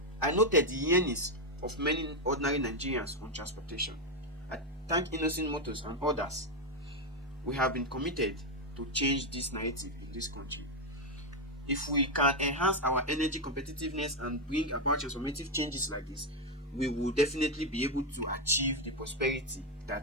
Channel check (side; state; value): both; normal; correlation 0.05